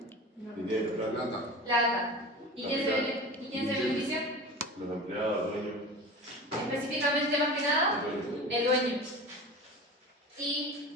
Dinero, plata. Plata. ¿Y quién se beneficia? Los empleados, dueños. Específicamente, más que nada, el dueño.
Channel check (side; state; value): both; normal; correlation 0.33